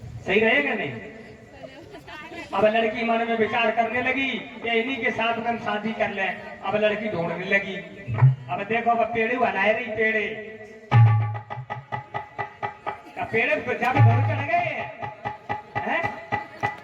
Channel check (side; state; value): both; identical; correlation 1.00